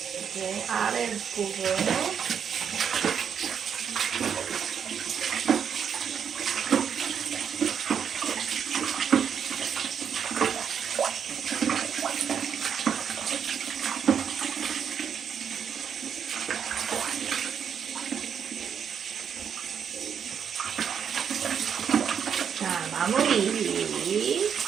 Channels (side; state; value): left; quieter; 7.6 dB